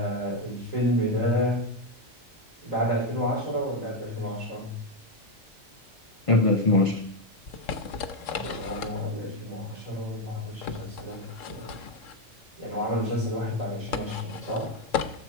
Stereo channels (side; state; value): both; normal; correlation 0.06